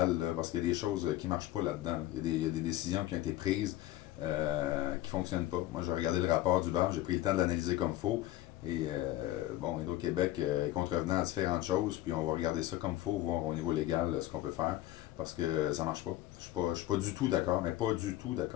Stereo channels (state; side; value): quieter; right; 15.3 dB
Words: là, parce qu'il y a des choses qui marchent pas là-dedans. Là. Il y a des décisions qui ont été prises qui fonctionnent pas. Moi, j'ai regardé le rapport du BAM, j'ai pris le temps de l'analyser comme il faut. Et bon, Hydro-Québec est contrevenant à différentes choses, puis on va regarder ça comme il faut, voir au niveau légal ce qu'on peut faire, parce que ça marche pas. Je suis pas du tout d'accord, mais pas du tout